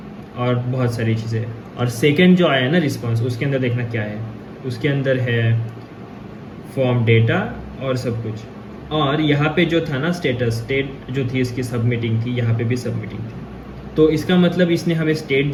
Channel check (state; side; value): identical; both; correlation 1.00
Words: और बहुत सारी चीज़ें। और सेकेंड जो आया ना रिस्पॉन्स, उसके अंदर देखना क्या है, उसके अंदर है फॉर्म डेटा और सब कुछ। और यहाँ पे जो था ना स्टेट जो थी इसकी सबमिटिंग थी, यहाँ पे भी सबमिटिंग थी। तो इसका मतलब इसने हमें स्टेट